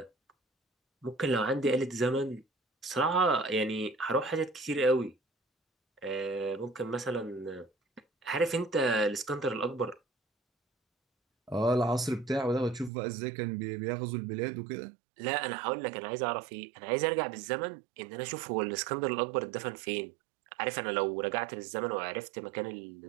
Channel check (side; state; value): left; drops out; at 12.9 s